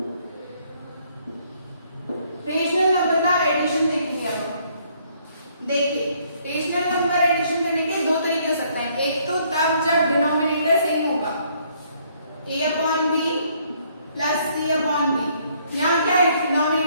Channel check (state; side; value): inverted; both; correlation -0.66